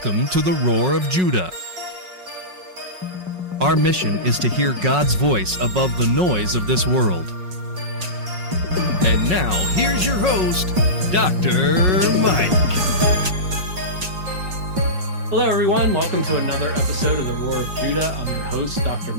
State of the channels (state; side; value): late; left; 5.4 ms